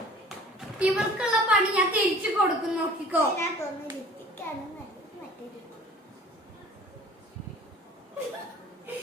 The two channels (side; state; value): both; normal; correlation 0.48